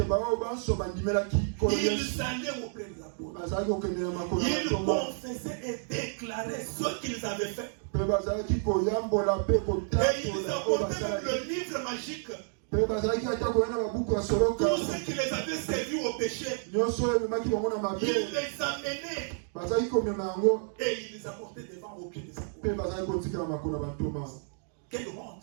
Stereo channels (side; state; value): left; silent; 57 dB below the other